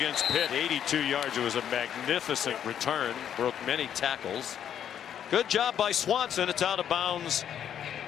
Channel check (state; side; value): quieter; right; 9.4 dB